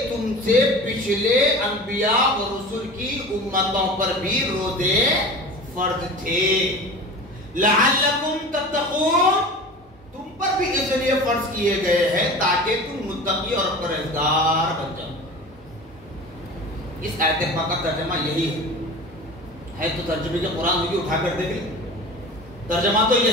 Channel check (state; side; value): normal; both; correlation 0.36